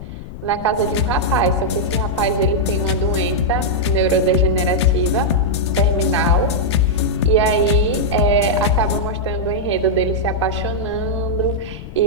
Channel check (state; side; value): noise; left; rumble, 13 dB below the sound